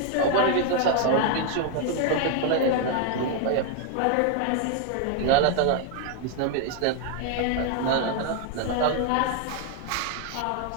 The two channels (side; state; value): both; different; correlation 0.00